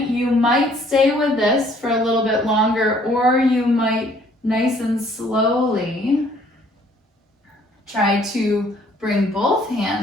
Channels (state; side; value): normal; both; correlation 0.60